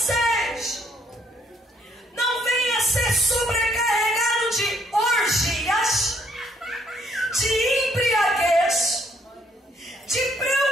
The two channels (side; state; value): both; normal; correlation 0.68